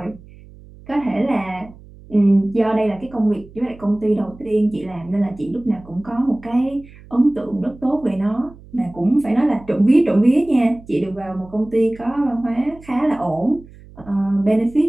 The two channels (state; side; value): noise; right; hum, 21 dB below the sound